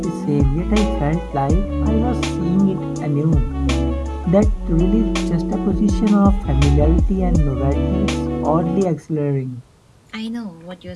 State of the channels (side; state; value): both; identical; correlation 1.00